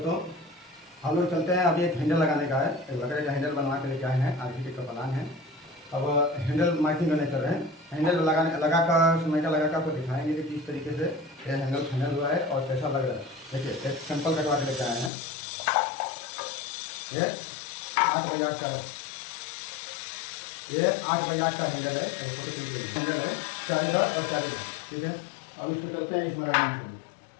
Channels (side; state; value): right; drops out; at 15.1 s